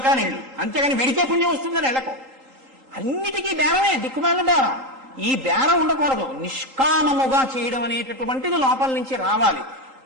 నేను. అంతేగాని వెడితే పుణ్యం వస్తుందని వెళ్ళకు. అన్నిటికీ బేరమే, దిక్కుమాలిన బేరం. ఈ బేరం ఉండకూడదు. నిష్కామముగా చేయడం అనేటటువంటిది లోపల నుంచి రావాలి.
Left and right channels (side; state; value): left; late; 3.8 ms